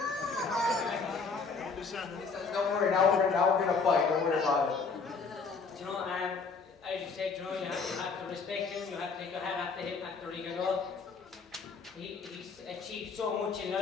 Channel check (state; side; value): quieter; right; 4.8 dB